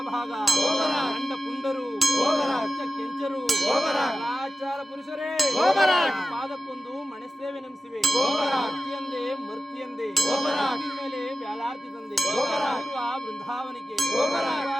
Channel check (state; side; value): normal; both; correlation 0.94